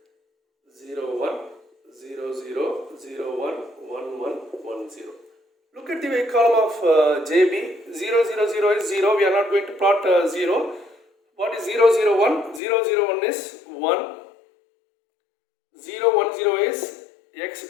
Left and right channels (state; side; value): drops out; right; at 12.6 s